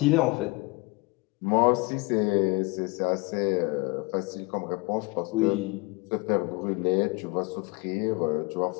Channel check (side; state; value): right; quieter; 26.1 dB